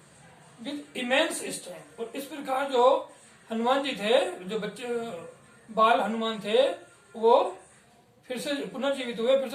with immense strength. और इस प्रकार जो हनुमान जी थे, जो बच्चे बाल हनुमान थे, वो फिर से पुनर्जीवित हुए, फिर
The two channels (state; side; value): identical; both; correlation 1.00